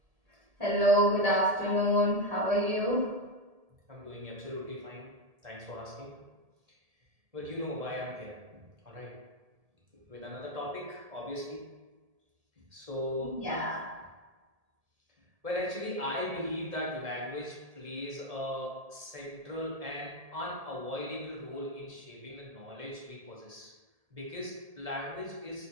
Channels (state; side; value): late; left; 1.7 ms